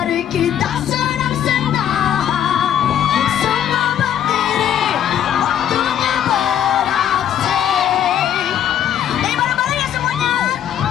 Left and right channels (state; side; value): quieter; right; 10.1 dB